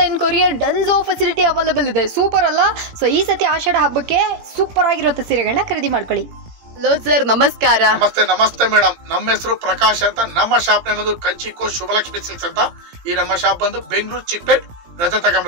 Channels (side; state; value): left; late; 18 ms